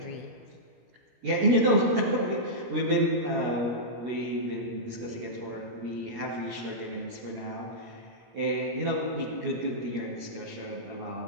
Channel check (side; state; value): left; late; 17 ms